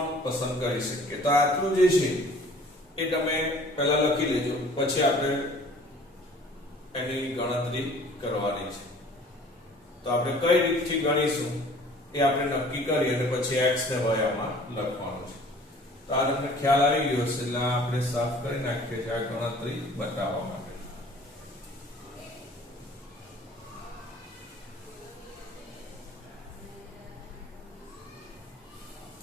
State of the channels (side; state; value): both; normal; correlation 0.50